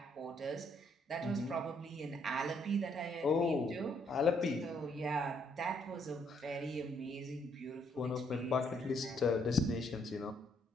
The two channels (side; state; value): both; normal; correlation 0.70